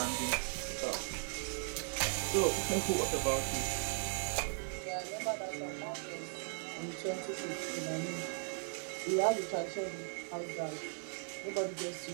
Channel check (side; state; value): left; silent; 53 dB below the other